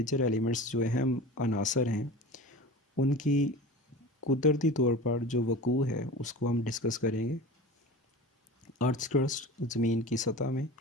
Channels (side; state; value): both; normal; correlation 0.34